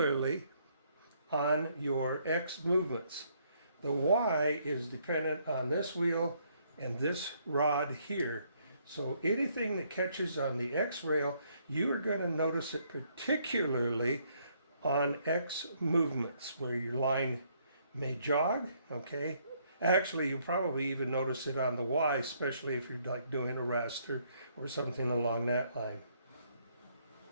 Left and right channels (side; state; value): both; inverted; correlation -0.69